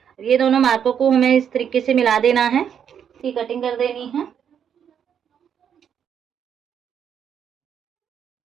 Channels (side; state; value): left; quieter; 8.3 dB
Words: ये दोनों मार्कों को हमें इस तरीके से मिला देना है। इसकी कटिंग कर देनी है।